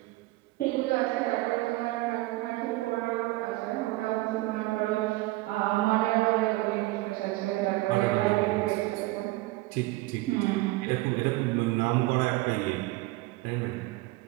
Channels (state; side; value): quieter; left; 19.9 dB